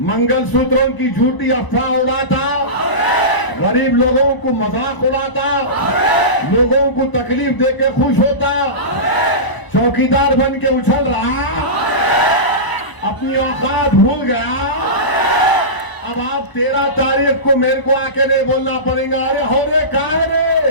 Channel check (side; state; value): right; late; 1.0 ms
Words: मंगलसूत्रों की झूठी अफवाह उड़ाता, गरीब लोगों को मजाक उड़ाता, लोगों को तकलीफ देके खुश होता, चौकीदार बन के उछल रहा, अपनी औकात भूल गया। अब आप 13 तारीख को मेरे को आके नहीं बोलना पड़ेगा, अरे हो रे कहा है